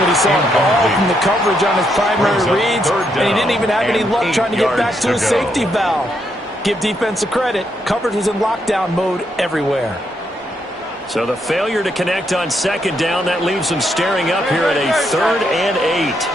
he saw all from the coverage on his primary reads, and he didn't even have any luck trying to get back to his safety valve. Give defense a credit. Coverage was in lockdown mode everywhere. So the failure to connect on 2nd down, that leaves them staring up here at a 3rd and 8.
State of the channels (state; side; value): normal; both; correlation 0.77